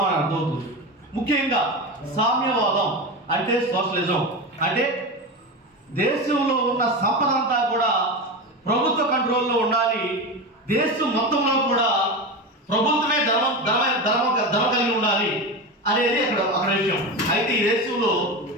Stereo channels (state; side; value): normal; both; correlation 0.22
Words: అర్థమవుతుంది. ముఖ్యంగా సామ్యవాదం అంటే సోషలిజం, అంటే దేశంలో ఉన్న సంపద అంతా కూడా ప్రభుత్వ కంట్రోల్లో ఉండాలి, దేశం మొత్తంలో కూడా ప్రభుత్వమే ధర్మం కలిగి ఉండాలి అనేది అక్కడ విషయం. అయితే